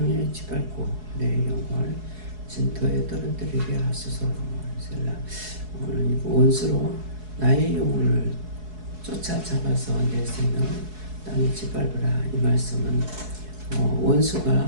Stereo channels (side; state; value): left; late; 4.7 ms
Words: 짓밟고 내 영혼을 진토에 떨어뜨리게 하소서. 오늘 원수로 나의 영혼을 쫓아잡아서 내 생명을 땅에 짓밟으라. 이 말씀은